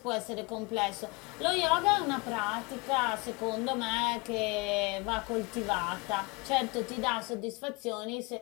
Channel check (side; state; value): right; quieter; 26.3 dB